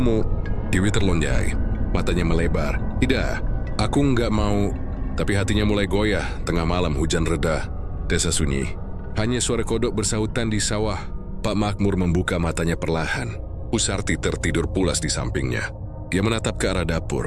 Dewi terlonjai. Matanya melebar. Tidak, aku nggak mau. Tapi hatinya mulai goyah. Tengah malam hujan reda. Desa sunyi. Hanya suara kodok bersahutan di sawah. Pak Makmur membuka matanya perlahan. Bu Sarti tertidur pulas di sampingnya. Dia menatap ke arah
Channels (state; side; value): identical; both; correlation 1.00